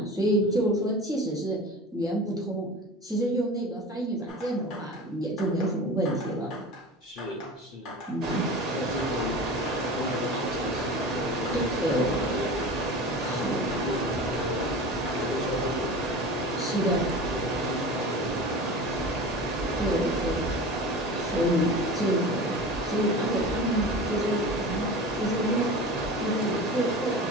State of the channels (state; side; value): normal; both; correlation 0.34